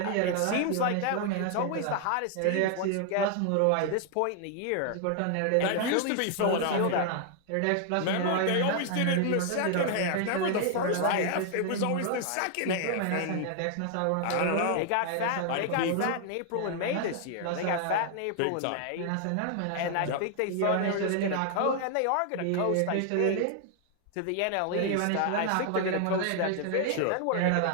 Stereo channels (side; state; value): both; different; correlation 0.00